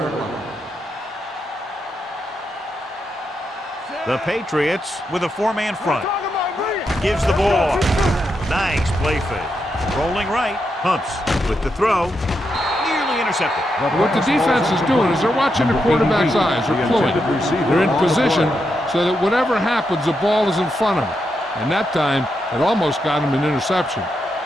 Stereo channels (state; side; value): normal; both; correlation 0.84